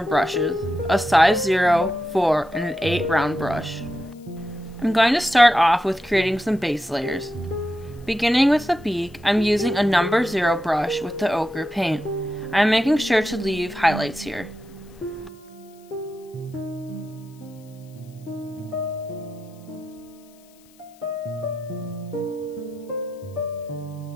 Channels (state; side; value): noise; left; hiss, 29 dB below the sound